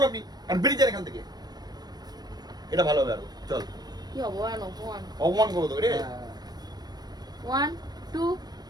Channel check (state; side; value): late; left; 0.19 ms